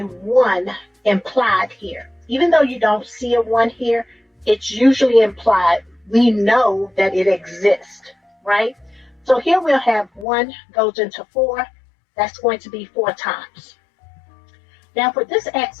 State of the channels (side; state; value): right; drops out; at 10.2 s